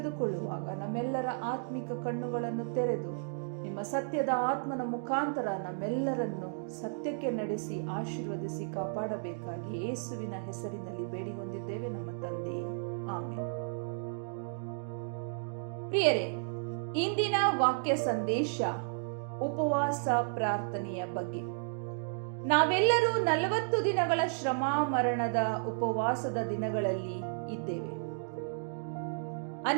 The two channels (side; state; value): left; silent; digital silence